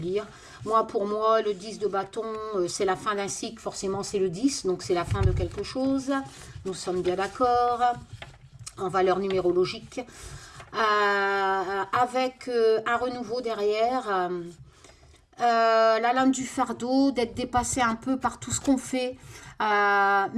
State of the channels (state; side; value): identical; both; correlation 1.00